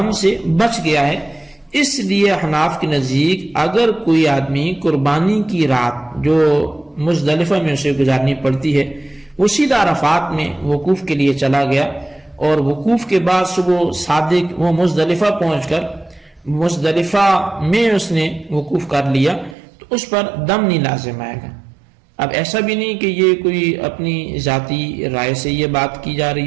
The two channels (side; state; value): left; drops out; at 19.6 s